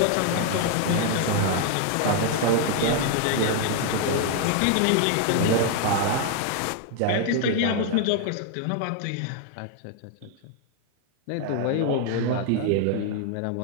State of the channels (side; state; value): both; different; correlation 0.00